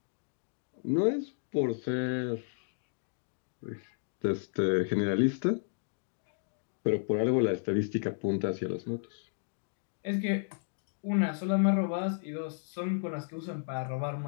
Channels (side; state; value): right; silent; digital silence